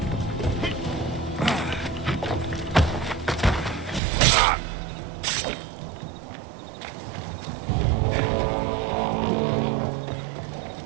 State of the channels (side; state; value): left; drops out; at 4.0 s